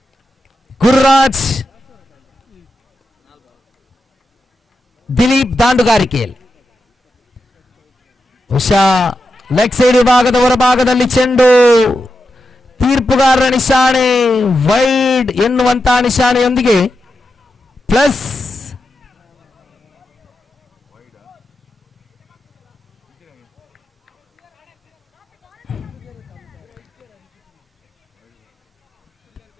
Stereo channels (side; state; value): both; normal; correlation 0.88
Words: ಗುರುರಾಜ್, ದಿಲೀಪ್ ದಾಂಡುಗಾರಿಕೆಯಲ್ಲಿ. ಬಹುಶಃ ಲೆಗ್ ಸೈಡ್ ವಿಭಾಗದ ಹೊರಭಾಗದಲ್ಲಿ ಚೆಂಡು. ತೀರ್ಪುಗಾರರ ನಿಶಾನೆ ವೈಡ್ ಎನ್ನುವಂತಹ ನಿಶಾನೆಯೊಂದಿಗೆ ಪ್ಲಸ್.